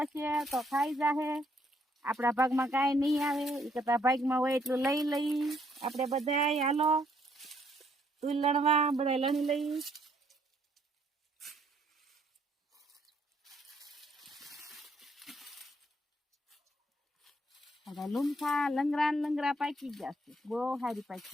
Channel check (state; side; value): normal; both; correlation 0.69